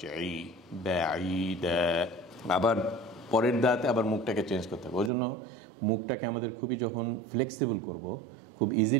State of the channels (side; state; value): left; drops out; at 5.1 s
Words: এই বাঈদা। আবার পরের দাঁতে আবার মুখটাকে চেঞ্জ করতে হবে। ওই জন্য মুখটাকে আমাদের খুবই যখন ফ্লেক্সিবল করব, খুব